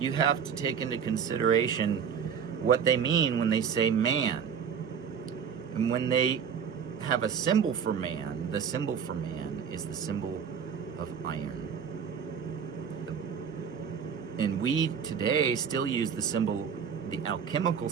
have to take into consideration what they mean when they say man. And when they have a symbol for man, the symbol for man is the symbol of iron. And we today still use the symbol, the alchemical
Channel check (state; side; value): quieter; left; 7.3 dB